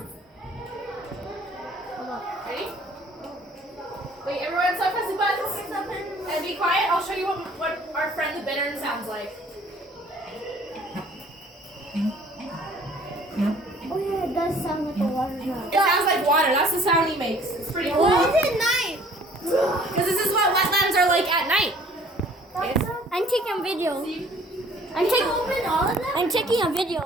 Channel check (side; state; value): both; normal; correlation 0.54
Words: Hold on. Ready? Wait, everyone stop pressing buttons. And be quiet. I'll show you what our friend the bittern sounds like. Oh yeah, it does sound like a water drop. It sounds like water. That's the sound he makes. It's pretty cool. Why is it night? Because this is what wetlands are like at night. I'm taking a video. See? Open all of them? I'm taking a